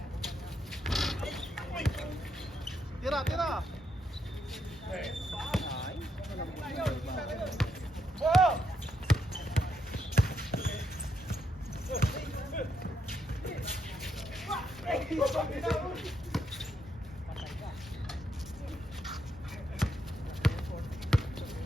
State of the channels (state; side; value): normal; both; correlation 0.79